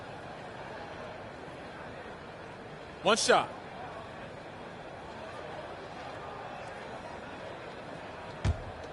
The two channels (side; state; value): both; identical; correlation 1.00